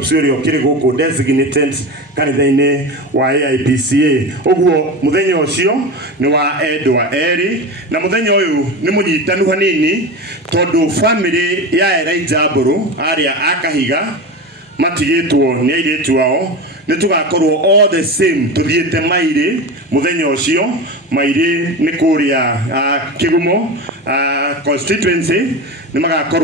uri kiri guku designated kanitha-ini wa AIPCA ogwo muthenya ucio ni wa Edwa Eri na muthenya uyu ni munyitanu hanini tondu family ya Elijah Mburu aria akahiga matigitwo ni airetu wao ni tugakorwo all the same tuthiete maire muthenya ucio maire ni kuria Kigumo constituency ni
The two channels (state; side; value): normal; both; correlation 0.25